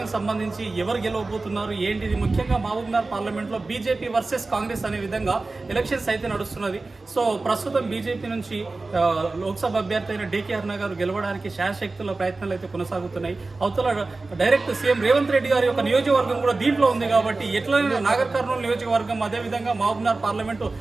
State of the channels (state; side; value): quieter; left; 3.5 dB